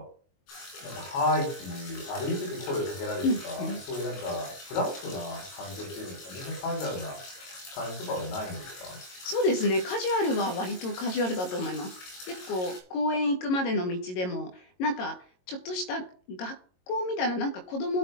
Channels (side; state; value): right; late; 22 ms